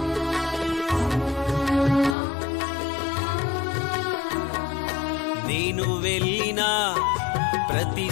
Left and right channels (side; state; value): right; drops out; at 2.1 s